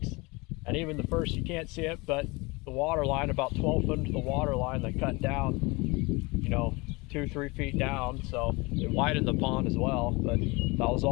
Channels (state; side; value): quieter; right; 25.4 dB